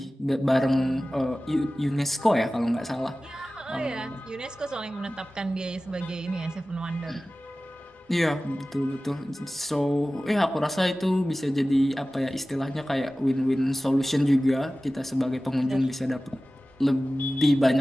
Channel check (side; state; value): both; normal; correlation 0.96